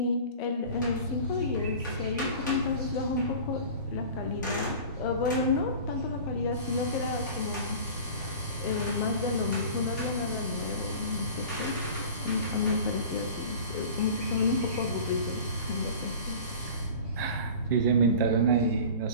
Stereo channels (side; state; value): both; inverted; correlation -0.39